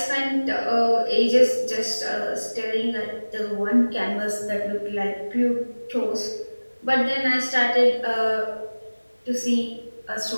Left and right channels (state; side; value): inverted; both; correlation -1.00